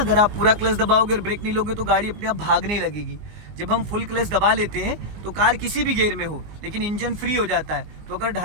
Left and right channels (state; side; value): late; left; 19 ms